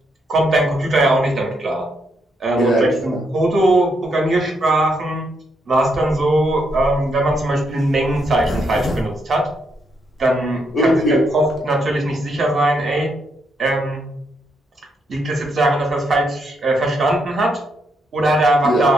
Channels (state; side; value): normal; both; correlation 0.78